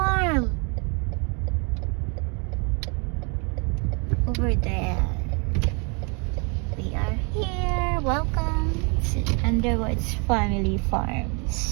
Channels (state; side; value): quieter; left; 33.5 dB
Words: Over there. We are here. Welcome to Underwood's Family